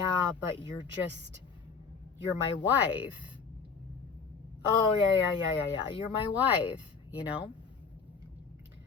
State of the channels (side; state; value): right; quieter; 5.4 dB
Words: but you're my wife. Oh, yeah, you're my wife, you know?